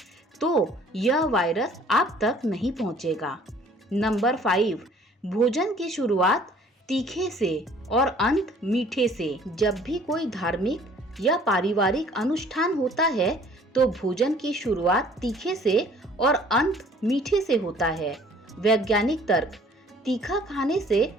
तो यह वायरस आप तक नहीं पहुंचेगा। नंबर 5, भोजन की शुरुआत तीखे से और अंत मीठे से। जब भी कोई धार्मिक या पारिवारिक अनुष्ठान होता है तो भोजन की शुरुआत तीखे से और अंत मीठे से होता है। वैज्ञानिक तर्क। तीखा खाने से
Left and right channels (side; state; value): both; normal; correlation 0.55